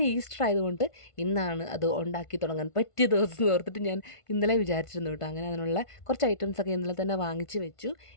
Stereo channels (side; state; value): right; late; 1.5 ms